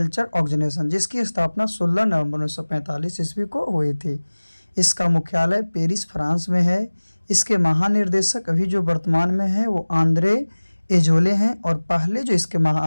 organisation, जिसकी स्थापना 16 नवंबर 1945 ईस्वी को हुई थी। इसका मुख्यालय पेरिस, फ्रांस में है। इसके महानिर्देशक अभी जो वर्तमान में हैं वो आंद्रे एजोले हैं, और पहले जो इसके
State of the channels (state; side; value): inverted; both; correlation -1.00